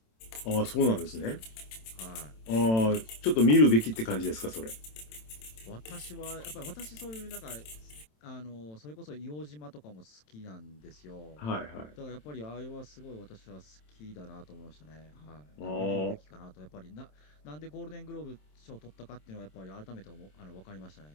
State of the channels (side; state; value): right; late; 27 ms